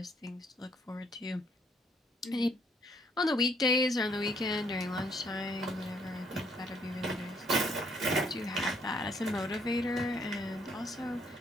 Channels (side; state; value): both; normal; correlation 0.68